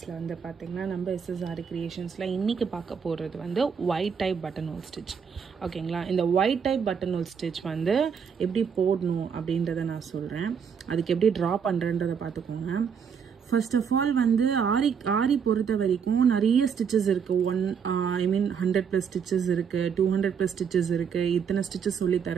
வந்து பார்த்திங்கன்னா நம்ம எஸ்எஸ்ஆர் கிரியேஷன்ஸில் இன்றைக்கி பார்க்க போகிறது வந்து white type button hole stitch. ஓகேங்களா, இந்த white type button hole stitch வந்து எப்படி போடணும் அப்படின்றத நான் சொல்கிறேன். அதுக்கு எப்படி ட்ரா பண்ணுறன்றதை பார்த்துக்கோங்க. ஃபர்ஸ்ட் ஆஃப் ஆல் வந்து ஆரி பொறுத்த வரைக்கும் நிறைய ஸ்டிச்சஸ் இருக்குது. 100+ ஸ்டிச்சஸ் இருக்குது, 200+ ஸ்டிச்சஸ் இருக்குது, இத்தனை ஸ்டிச்சஸ்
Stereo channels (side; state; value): left; quieter; 6.8 dB